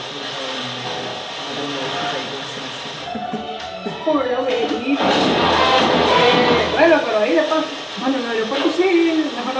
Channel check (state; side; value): identical; both; correlation 1.00